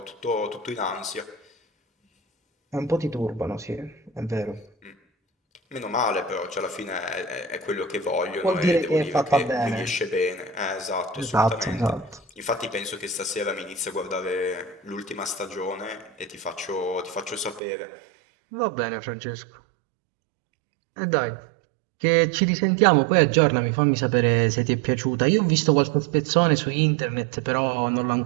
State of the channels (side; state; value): left; drops out; at 17.6 s